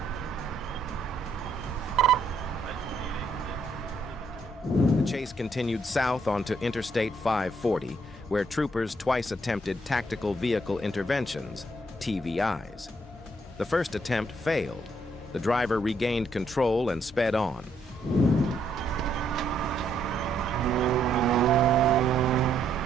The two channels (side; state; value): both; normal; correlation 0.72